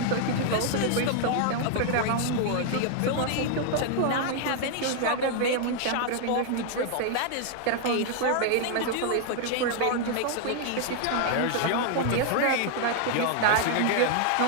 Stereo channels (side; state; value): both; different; correlation 0.00